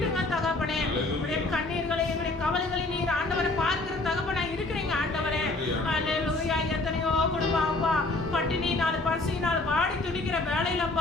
தகப்பனே. உடைய கண்ணீர்களை எங்களுடைய கவலைகளை நீர் ஆண்டவரை பார்க்கிற தகப்பனா இருக்கிறீங்க ஆண்டவரே. அல்லேலூயா. எத்தனையோ குடும்பம் அப்பா பட்டினியினால் பசியினால் வாடி துடிக்கிற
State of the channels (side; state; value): right; quieter; 3.1 dB